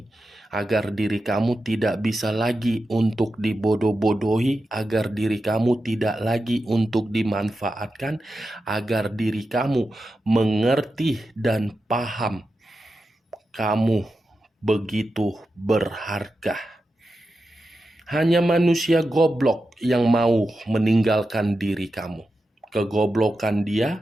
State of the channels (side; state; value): both; normal; correlation 0.90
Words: Agar diri kamu tidak bisa lagi untuk dibodoh-bodohi, agar diri kamu tidak lagi untuk dimanfaatkan, agar diri kamu mengerti dan paham kamu begitu berharga. Hanya manusia goblok yang mau meninggalkan diri kamu. Kegoblokan